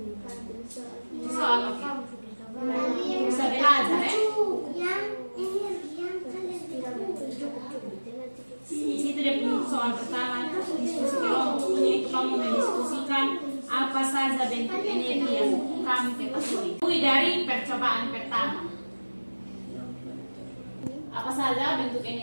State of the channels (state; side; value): inverted; both; correlation -1.00